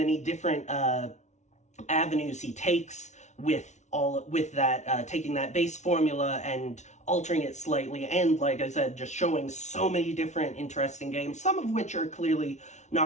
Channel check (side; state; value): right; late; 0.33 ms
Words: different avenues he takes with that, taking that base formula and altering it slightly, and like I said, just showing so many different interesting games, some of which are clearly